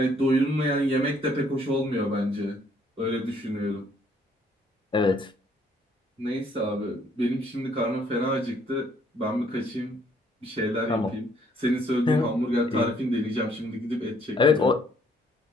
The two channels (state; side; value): normal; both; correlation 0.65